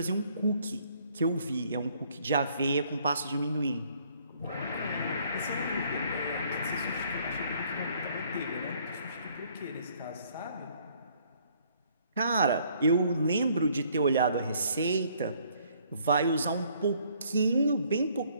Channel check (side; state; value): both; inverted; correlation -0.63